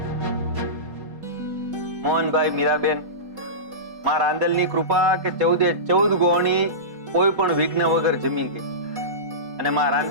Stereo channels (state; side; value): late; left; 4.1 ms